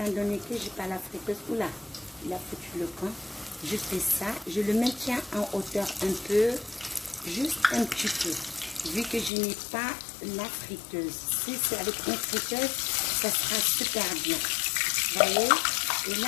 donné que j'ai pas la friteuse, oula, il a foutu le camp. Je fais ça, je le maintiens en hauteur un peu, juste un petit peu, vu que je n'ai pas la friteuse. Si c'est avec une friteuse, ça sera super bien. Vous voyez? Et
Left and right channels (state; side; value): drops out; right; at 9.3 s